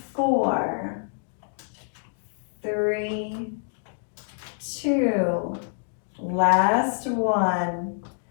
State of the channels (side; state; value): right; silent; digital silence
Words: 4, 3, 2, last one.